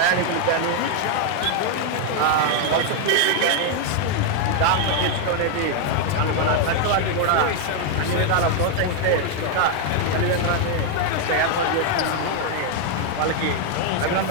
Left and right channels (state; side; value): different; both; correlation 0.00